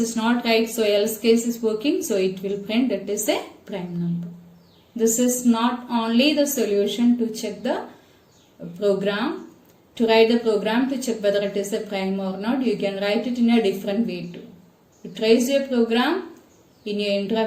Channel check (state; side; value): identical; both; correlation 1.00